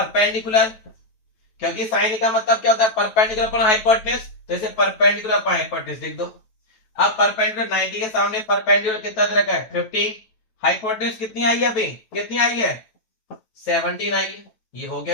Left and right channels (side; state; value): right; late; 9.2 ms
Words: क्योंकि साइन ए का मतलब क्या होता है परपेंडिकुलर अपॉन हाइपोटेन्यूज, तो इसे परपेंडिकुलर अपॉन हाइपोटेन्यूज लिख दो। अब परपेंडिकुलर 90 के सामने परपेंडिकुलर कितना दे रखा है 15, हाइपोटेन्यूज कितनी आई है अभी, कितनी आई है 17 आई है, ये हो